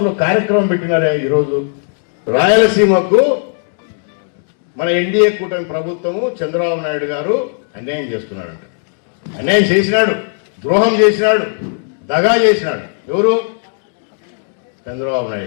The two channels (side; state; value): right; silent; digital silence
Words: కార్యక్రమం పెట్టినారా? ఈరోజు రాయలసీమకు మన ఎన్డీఏ కూటమి ప్రభుత్వము చంద్రబాబు నాయుడు గారు అన్యాయం చేస్తున్నాడు. అన్యాయం చేసినాడు, ద్రోహం చేసినాడు, దగా చేసినాడు. ఎవరు? చంద్రబాబు